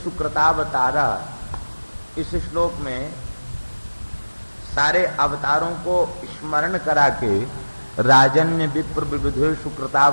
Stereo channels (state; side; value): inverted; both; correlation -1.00